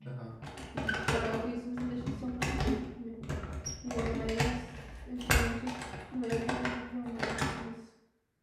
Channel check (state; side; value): identical; both; correlation 1.00